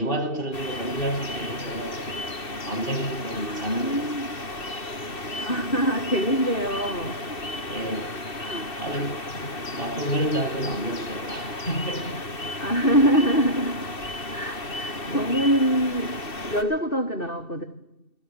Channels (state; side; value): late; right; 2.7 ms